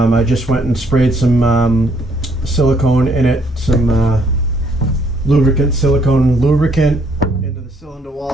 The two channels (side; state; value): both; normal; correlation 0.68